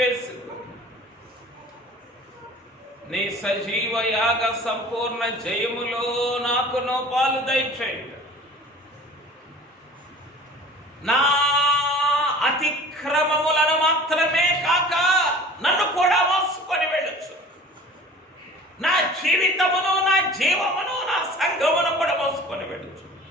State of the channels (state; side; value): normal; both; correlation 0.44